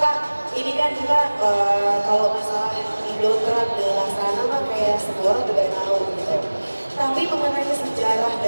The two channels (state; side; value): inverted; both; correlation -1.00